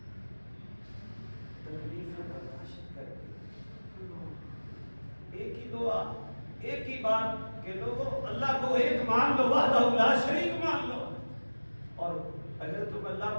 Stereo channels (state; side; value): inverted; both; correlation -1.00